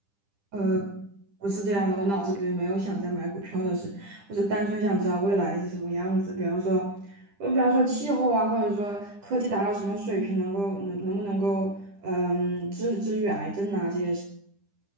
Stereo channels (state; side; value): late; left; 10 ms